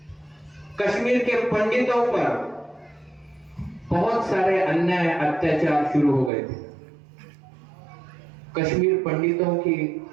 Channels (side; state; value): left; drops out; at 6.3 s